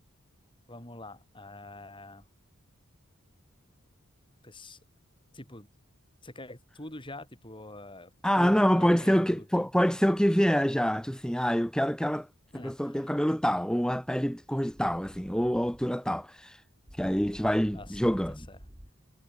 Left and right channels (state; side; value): normal; both; correlation 0.98